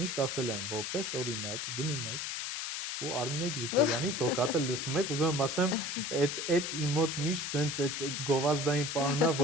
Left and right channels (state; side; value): noise; left; hiss, 3 dB below the sound